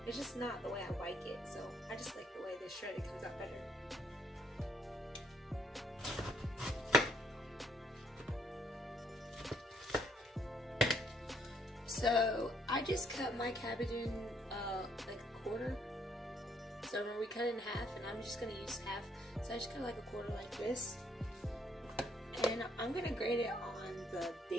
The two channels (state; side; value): normal; both; correlation 0.68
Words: it's just not the way I like it. So I just like the way the shredder comes out better. So I just cut my cabbage in like a quarter. So remember, we cut it in half, and I'm just gonna use half. So I just cut like a quarter like this, and I'm gonna grate it on the